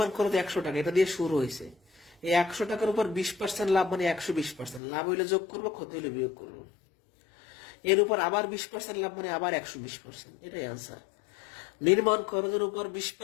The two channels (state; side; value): drops out; right; at 4.8 s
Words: খরচ 100 টাকা, এটা দিয়ে শুরু হয়েছে। এই 100 টাকার উপর 20% লাভ মানে 120%, লাভ হইলে যোগ করবো, ক্ষতি হইলে বিয়োগ করবো। এর উপর আবার 20% লাভ মানে আবার 120%, এটাই আনসার। নির্মাণ খরচের উপর